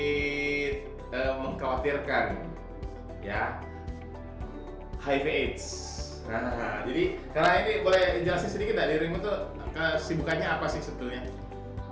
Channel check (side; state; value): both; identical; correlation 1.00